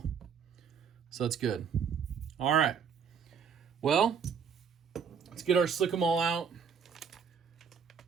So that's good. All right. Well, let's get our Slick'em All out.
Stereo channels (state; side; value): quieter; left; 6.7 dB